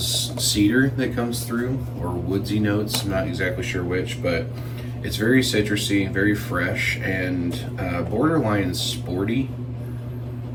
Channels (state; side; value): identical; both; correlation 1.00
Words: cedar that comes through, or woodsy notes. I'm not exactly sure which, but it's very citrusy, very fresh, and borderline sporty.